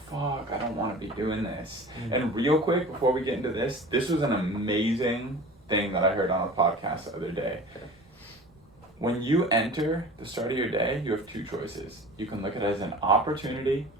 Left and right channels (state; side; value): normal; both; correlation 0.39